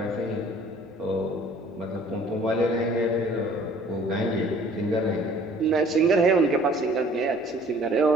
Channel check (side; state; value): both; normal; correlation 0.54